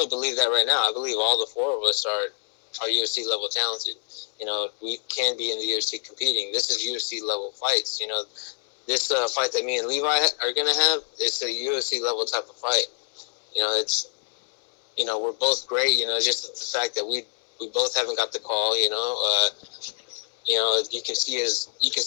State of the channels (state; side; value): silent; right; digital silence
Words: believe that right now. I believe all the four of us are UFC level talented. We can be in the UFC competing. This is UFC level fights. This fight that me and Levi are gonna have, it's a UFC level type of fight. It's we're both great. Just the fact that we both haven't got the call. You can